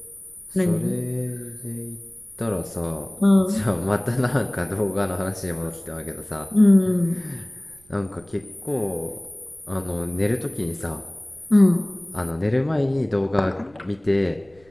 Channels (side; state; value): right; noise; rumble, 30 dB below the sound